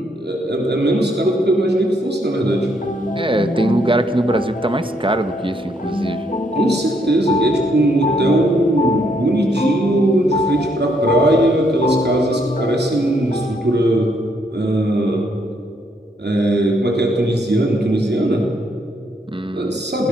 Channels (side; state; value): both; normal; correlation 0.72